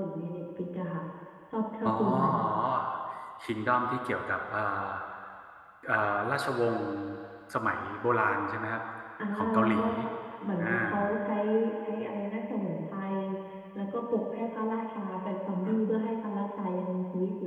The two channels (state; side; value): identical; both; correlation 1.00